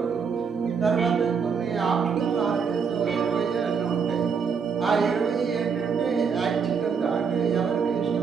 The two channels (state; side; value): quieter; left; 6.1 dB